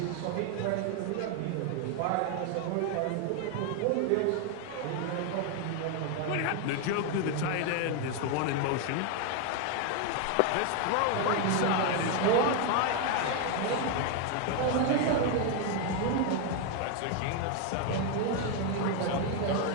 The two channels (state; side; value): different; both; correlation 0.01